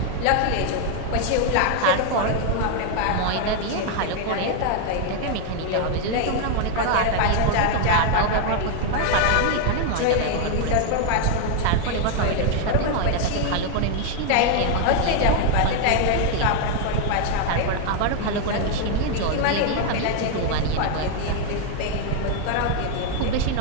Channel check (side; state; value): both; different; correlation 0.01